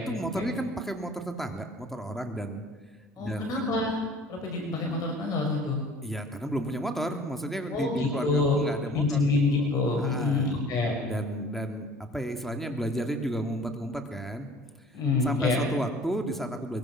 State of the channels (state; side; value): normal; both; correlation 0.49